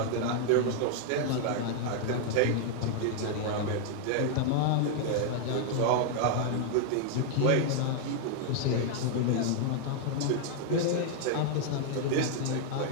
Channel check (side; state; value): both; different; correlation 0.00